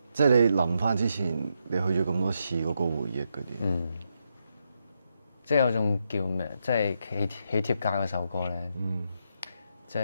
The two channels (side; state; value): both; inverted; correlation -0.81